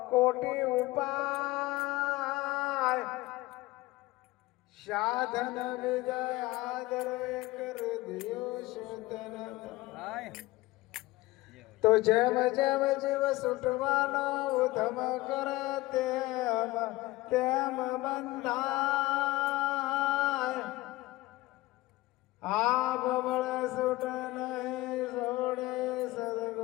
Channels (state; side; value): quieter; right; 19.4 dB